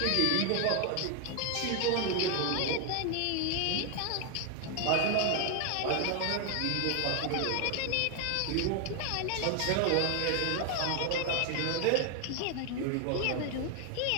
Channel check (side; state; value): both; different; correlation 0.01